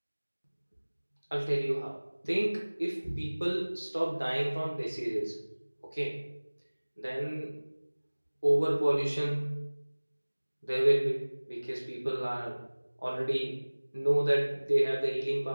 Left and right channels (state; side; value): inverted; both; correlation -1.00